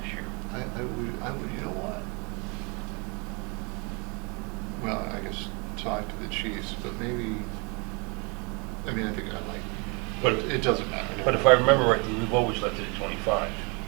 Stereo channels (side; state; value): left; quieter; 31.6 dB